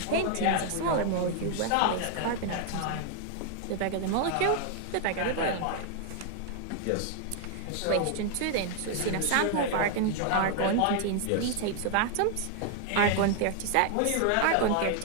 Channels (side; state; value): both; different; correlation 0.00